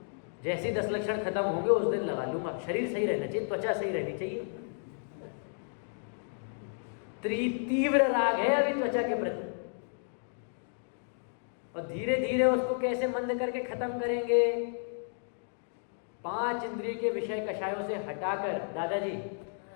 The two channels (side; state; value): right; silent; digital silence